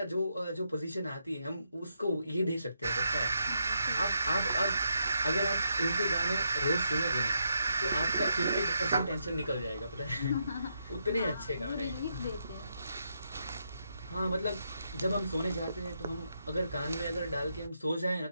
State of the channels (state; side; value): inverted; both; correlation -0.80